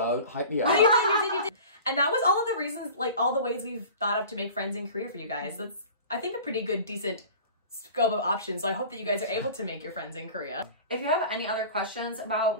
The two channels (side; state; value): both; inverted; correlation -0.40